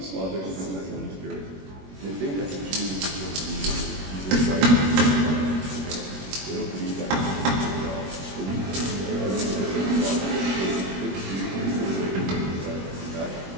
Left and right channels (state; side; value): late; left; 21 ms